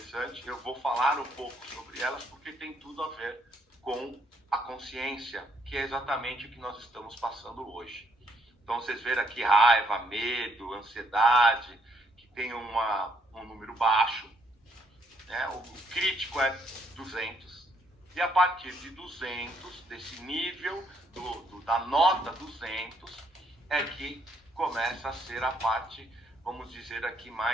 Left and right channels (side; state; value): both; normal; correlation 0.71